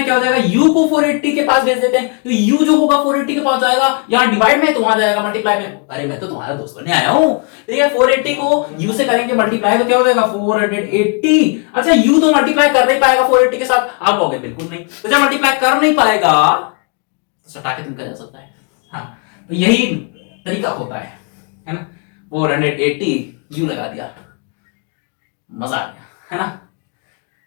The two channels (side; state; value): right; quieter; 37.2 dB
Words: क्या हो जाएगा, u को 480 के पास भेज देते हैं, तो u जो होगा 480 के पास जाएगा, यहां डिवाइड में तो वहां जाएगा मल्टीप्लाई में। अरे मैं तो तुम्हारा दोस्त बनने आया हूं, ठीक है। 480 को u से करेंगे मल्टीप्लाई तो क्या हो जाएगा 480। अच्छा u तो मल्टीप्लाई कर नहीं पाएगा 480 के साथ, आप कहोगे बिल्कुल नहीं, तो जब मल्टीप्लाई कर नहीं पाएगा तो सटा के तुमका जा सकता है। हाँ तो यही तरीका होता है ना। 480 u लगा दिया, मजा आ गया, है ना।